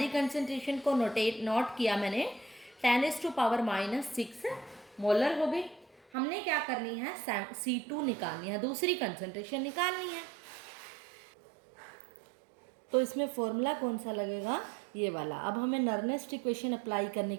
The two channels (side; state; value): left; drops out; at 6.1 s